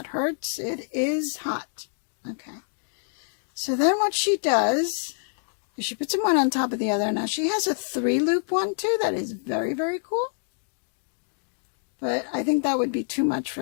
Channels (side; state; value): right; silent; digital silence